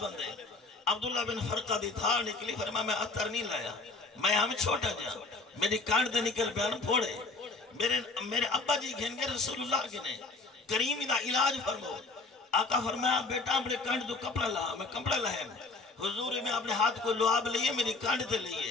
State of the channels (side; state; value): right; quieter; 3.6 dB